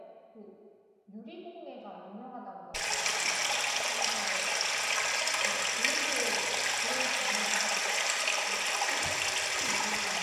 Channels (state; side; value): identical; both; correlation 1.00